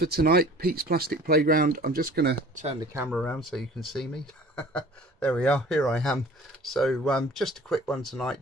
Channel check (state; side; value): normal; both; correlation 0.47